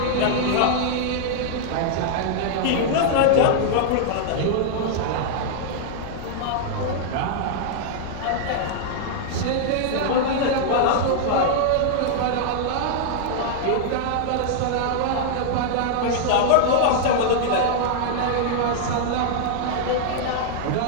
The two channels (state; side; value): different; both; correlation -0.01